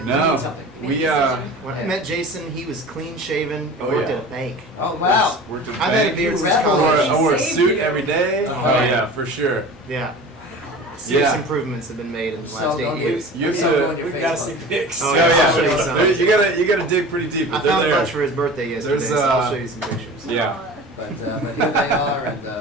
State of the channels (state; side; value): normal; both; correlation 0.37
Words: No. need something? When I met Jason, he was clean shaven and worked at a bank. Oh, wow. Worked at a I've had a bank. beard since Rebel. college. I wore a suit every day. Oh yeah, for sure. Yeah. Serious Yeah. improvements have been made in the So last 8 don't years. You have Yeah, to. We've got to see pics. Oh, Oh yeah, yeah, I'll show you some. You gotta dig pretty deep. I But they're found a there. bunch for his birthday yesterday, There's, so I'll show you some pictures. Yeah. But here they are, and